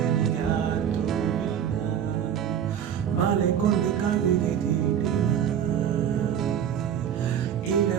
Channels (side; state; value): left; quieter; 9.1 dB